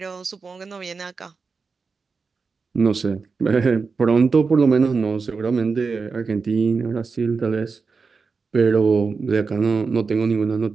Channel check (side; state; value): left; quieter; 4.8 dB